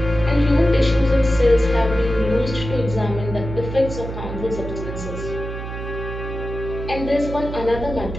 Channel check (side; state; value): right; noise; hum, 8 dB below the sound